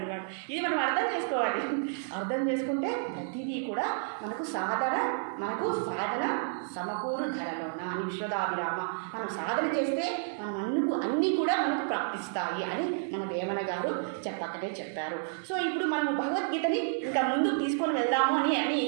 ఇది మనం అర్థం చేసుకోవాలి. అర్థం చేసుకుంటే ప్రతిదీ కూడా మనకు సాధన సమకూరు ధరలోన అని విశ్వదాభిరామ. మనం సాధన చేస్తే మనం అన్నీ కూడా మనకు ప్రాప్తిస్తాయి అని మన వేమన గారు చెప్పారు. సో ఇప్పుడు మనము భగవద్గీతని ఇంకా ముందుకు తీసుకొని వెళ్దాము అని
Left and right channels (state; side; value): silent; left; digital silence